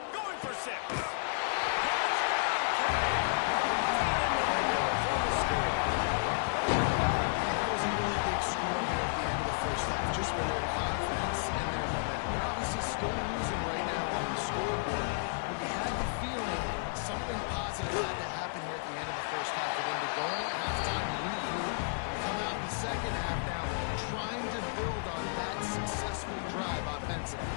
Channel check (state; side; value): silent; right; digital silence